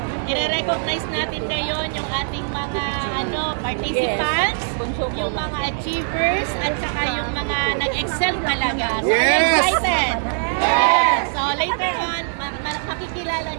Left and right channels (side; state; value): left; silent; digital silence